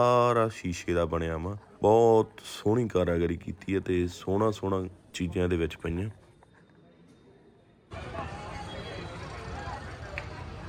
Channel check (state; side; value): identical; both; correlation 1.00